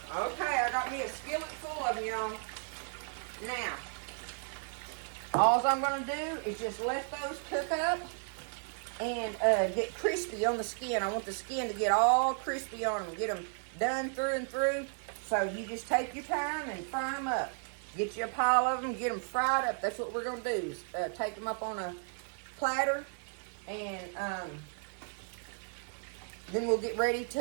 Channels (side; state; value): left; silent; 55 dB below the other